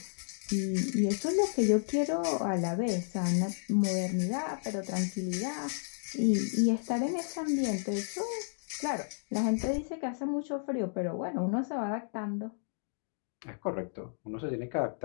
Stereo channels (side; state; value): right; silent; digital silence